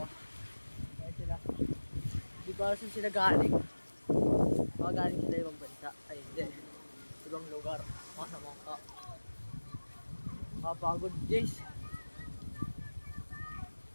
oh. Kaya sila. Di ba saan sila galing? Baka galing sila ibang bansa. Ay hindi. Ibang lugar. Mga naman ka. Kapagod guys.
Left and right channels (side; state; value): both; inverted; correlation -1.00